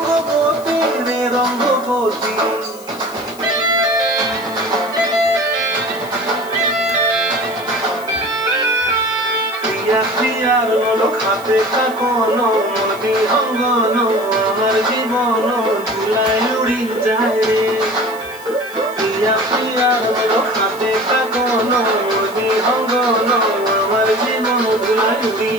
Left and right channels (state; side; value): noise; left; hiss, 20 dB below the sound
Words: রে রঙ্গবতী। প্রিয়ার লোক হাতে কাকন, মন বিহঙ্গন আমার জীবন ধুলায় উড়ি যায় রে। প্রিয়ার লোক হাতে কাকন, মন বিহঙ্গন আমার জীবন ধুলায় উড়ি